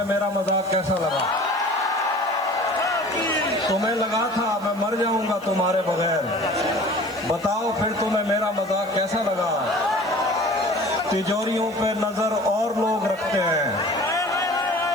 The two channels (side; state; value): right; noise; hiss, 24 dB below the sound